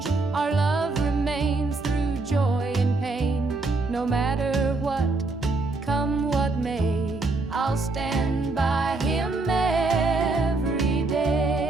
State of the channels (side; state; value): left; quieter; 3.4 dB